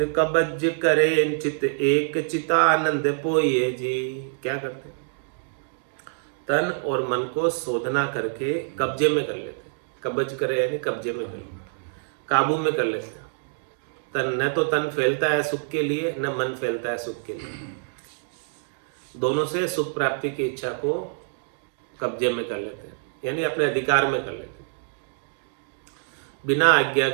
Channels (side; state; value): left; silent; digital silence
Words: कबज करे चित एक चितानंद पोइए जी। क्या करते हैं? तन और मन को शोधना करके कब्जे में कर लेते। कब्ज करे यानी कब्जे में कर लेते, काबू में कर लेते हैं। तन न तो तन फैलता है सुख के लिए, न मन फैलता है सुख के लिए। दोनों से सुख प्राप्ति की इच्छा को कब्जे में कर लेते हैं, यानी अपने अधिकार में कर लेते हैं। बिना आज्ञा